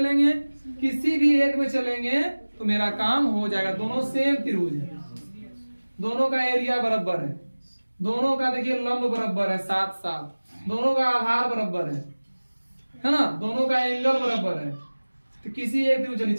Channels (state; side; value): inverted; both; correlation -1.00